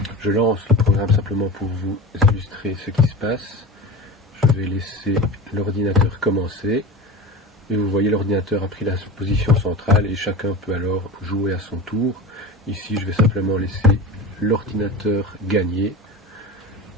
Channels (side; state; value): both; normal; correlation 0.30